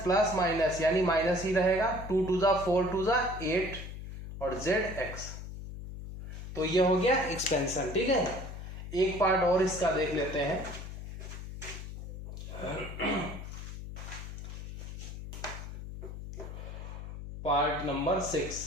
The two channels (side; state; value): left; noise; hum, 9 dB below the sound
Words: प्लस माइनस यानी माइनस ही रहेगा, 2 2 ज़ा 4 2 ज़ा 8 और zx, तो ये हो गया एक्सपेंशन, ठीक है। एक पार्ट और इसका देख लेते हैं, part number